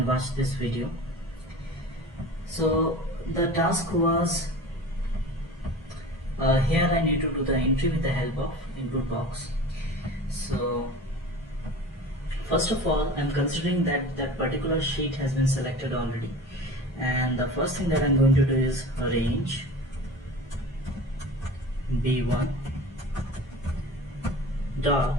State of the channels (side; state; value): both; normal; correlation 0.36